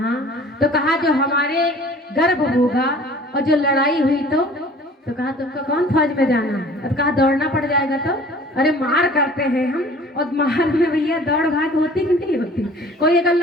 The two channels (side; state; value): both; normal; correlation 0.48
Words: तो कहा जो हमारे गर्भ होगा और जो लड़ाई हुई तो कहा तुमको कौन फौज में जाना है? तो कहा दौड़ना पड़ जाएगा। तो अरे मार करते हैं हम, और मार में भैया दौड़ भाग होती कि नहीं होती? कोई अगर